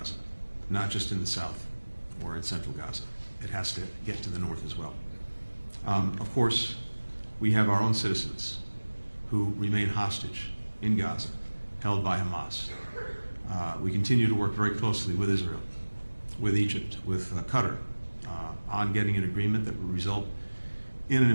not just in the south or in central Gaza. It has to get to the north as well. Of course, we have our own citizens who remain hostage in Gaza, held by Hamas. We continue to work very closely with Israel with Egypt, with Qatar, on getting an agreement that would result in an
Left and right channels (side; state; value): both; inverted; correlation -1.00